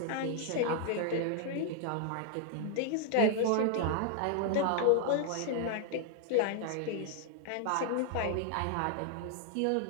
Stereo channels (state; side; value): different; both; correlation 0.00